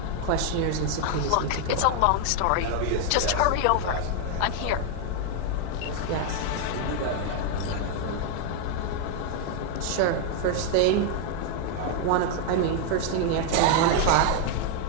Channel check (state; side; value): different; both; correlation 0.00